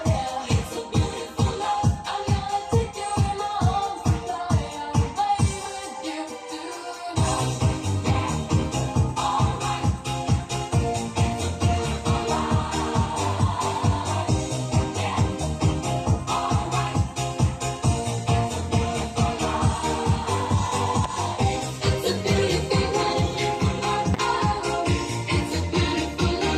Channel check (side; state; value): both; identical; correlation 1.00